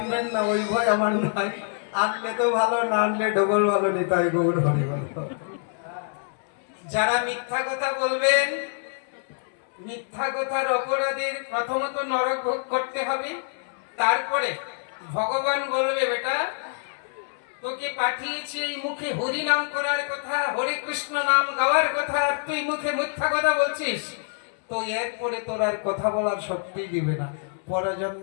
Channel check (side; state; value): right; silent; 61 dB below the other